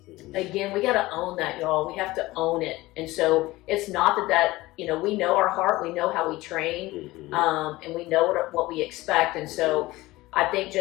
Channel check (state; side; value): quieter; right; 19.0 dB